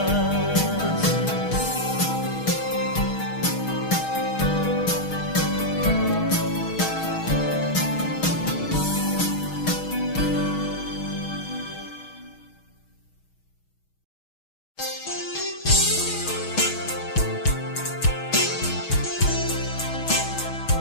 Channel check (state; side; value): late; right; 6.3 ms